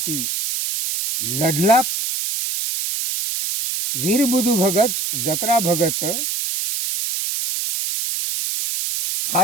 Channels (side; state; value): right; noise; hiss, 2 dB below the sound